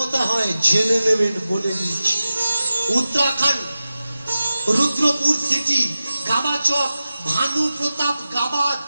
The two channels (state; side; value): inverted; both; correlation -0.94